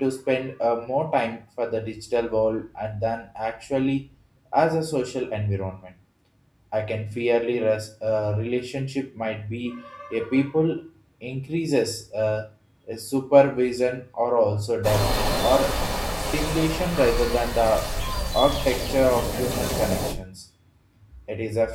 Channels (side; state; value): both; identical; correlation 1.00